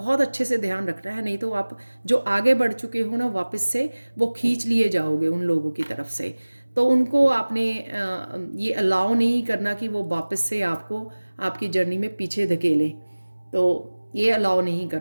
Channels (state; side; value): inverted; both; correlation -1.00